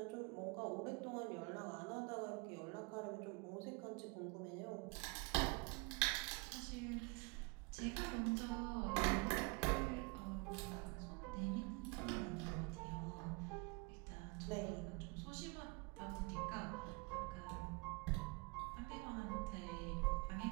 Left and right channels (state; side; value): quieter; left; 28.8 dB